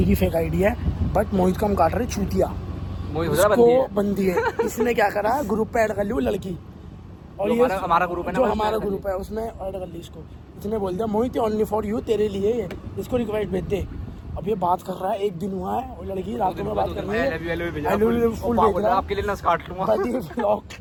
की फेक आईडी है, बट मोहित का हम काट रहे चूतिया, उसको बंदी है। इसने क्या करा, ग्रुप पे ऐड कर ली वो लड़की, और ये हमारा ग्रुप है ना, जो हमारा ग्रुप है उसमें ऐड कर ली इसको। इसने बोल दिया मोहित ओनली फॉर यू, तेरे लिए है, इसको रिक्वेस्ट भेज दे। अब ये बात कर रहा है, एक दिन हुआ है, और लड़की रातों में बात कर रही है, आपके लिए ना काट लूंगा। ब्लॉग।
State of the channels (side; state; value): both; identical; correlation 1.00